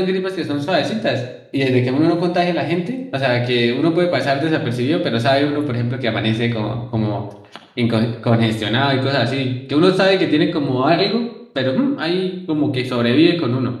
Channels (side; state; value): both; identical; correlation 1.00